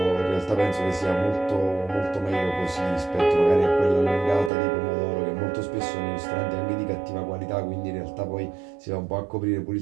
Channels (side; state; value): left; drops out; at 4.5 s